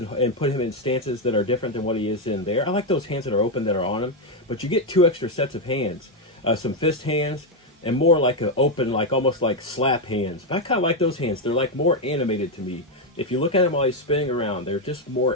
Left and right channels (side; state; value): both; normal; correlation 0.04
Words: put him in stances that are different than what he is in there. I like those hands that are open that are on him. But you get 2 extra sets of hands. Some fist hands and more like an open, like almost like slap hands. But I kind of like those hands. They're like more animated to me. If you look at him while he's spinning around, they're just